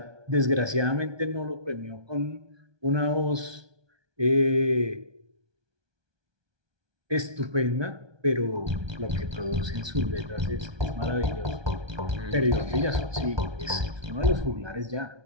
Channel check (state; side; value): late; left; 1.2 ms